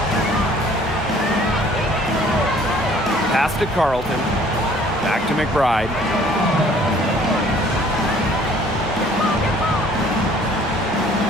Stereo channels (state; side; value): normal; both; correlation 0.56